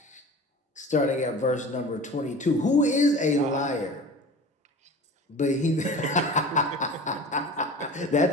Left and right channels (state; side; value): normal; both; correlation 0.38